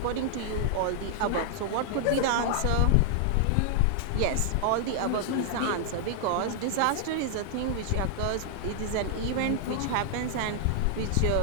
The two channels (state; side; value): different; both; correlation -0.01